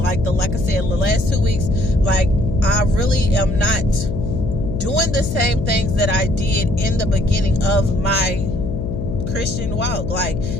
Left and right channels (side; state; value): left; noise; hum, 4 dB below the sound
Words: I said, the last 2 weeks. Like I really am not doing the same things that I did in the beginning of my Christian walk, like